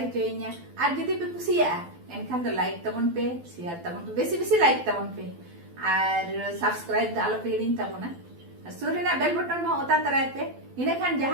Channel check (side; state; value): left; late; 12 ms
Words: और जदि पे कुसिया एनखान तो लाइक तबन पे share तबन पे बेसी बेसी लाइक तबन पे और subscribe आलो पे हिड़िन तबना सुरेना बेल बटन में ओता तराय पे इने खान